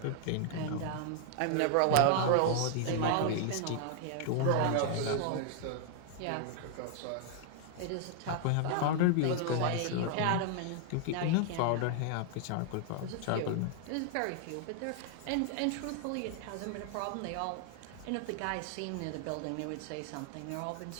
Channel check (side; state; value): both; different; correlation 0.00